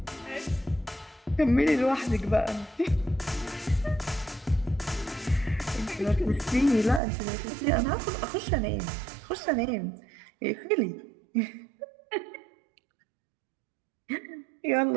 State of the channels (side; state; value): left; drops out; at 7.0 s